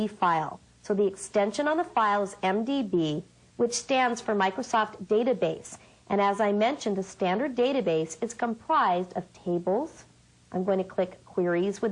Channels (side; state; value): both; identical; correlation 1.00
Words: file. So the extension on the file is MDB, which stands for Microsoft Database. And as I mentioned, a standard database is comprised of tables. I'm going to click Queries